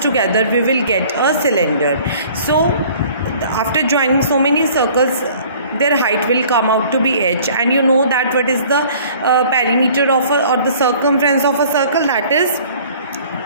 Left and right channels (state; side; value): inverted; both; correlation -0.52